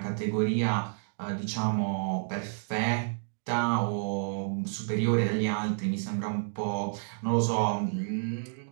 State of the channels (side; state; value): left; silent; digital silence